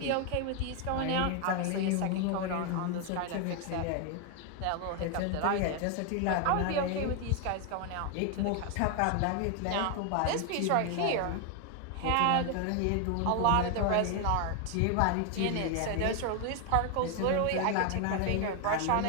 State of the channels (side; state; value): both; different; correlation 0.01